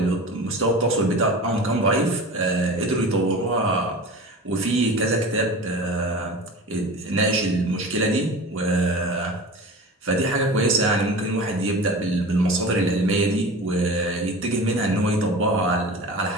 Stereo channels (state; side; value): normal; both; correlation 0.34